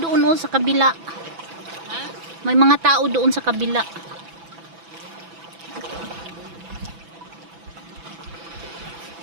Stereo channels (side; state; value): left; late; 6.0 ms